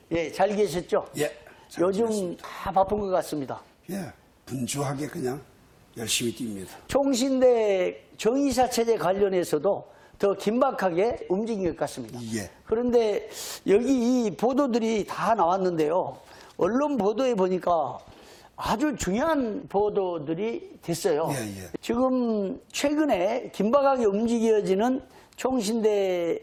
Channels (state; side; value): identical; both; correlation 1.00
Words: 예, 잘 계셨죠? 예. 요즘 다 바쁜 것 같습니다. 예. 분주하게 그냥 열심히 뜁니다. 총신대 정의사체제 관련해서도 더 긴박하게 움직인 것 같습니다. 예. 그런데 여기 이 보도들이 다 나왔는데요. 언론 보도에 보니까 아주 중요한 보도들이 됐어요. 예. 지금 최근에 긴박하게 움직여지는